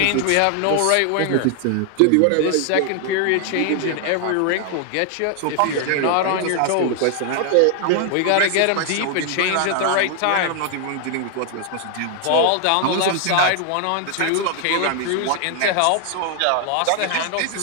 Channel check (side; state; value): both; different; correlation 0.00